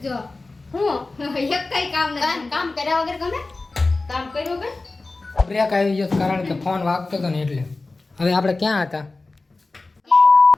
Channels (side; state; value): right; quieter; 3.4 dB